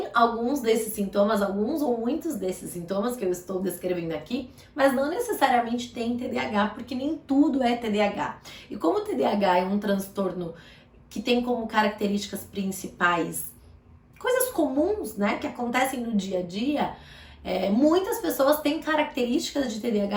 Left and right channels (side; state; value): both; identical; correlation 1.00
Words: alguns desses sintomas, alguns ou muitos desses sintomas que eu estou descrevendo aqui, mas não necessariamente tem TDAH, porque nem tudo é TDAH. E como o TDAH é um transtorno que tem como características principais coisas comuns, né, que acontecem no dia a dia, muitas pessoas têm características de